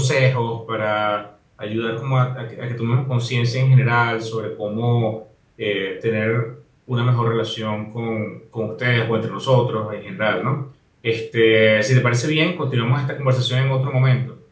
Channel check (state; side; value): identical; both; correlation 1.00